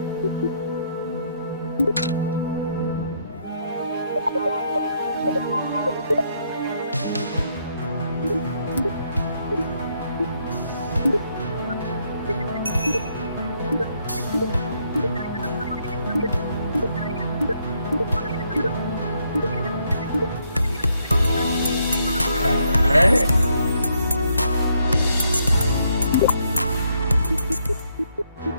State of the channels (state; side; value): inverted; both; correlation -0.73